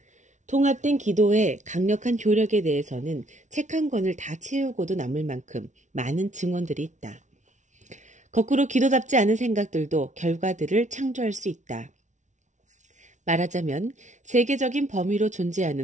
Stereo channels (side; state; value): left; late; 0.35 ms